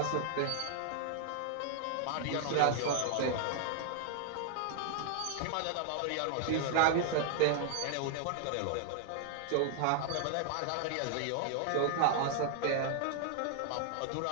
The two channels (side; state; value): both; different; correlation 0.00